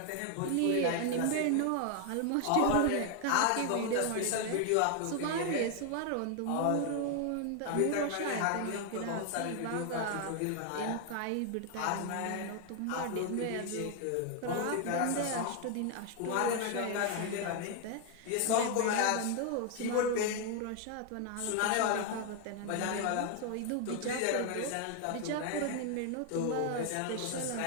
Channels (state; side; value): different; both; correlation 0.00